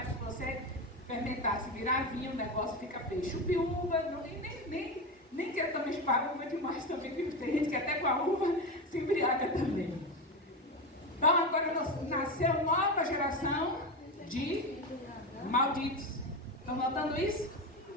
se você fermentar, se virar vinho, o negócio fica feio. Chupe uva, nem quero também chupar uva demais também, porque tem gente que até com a uva se embriaga também. Então agora nasceu nova geração de malditos. Estão notando isso?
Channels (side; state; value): both; normal; correlation 0.18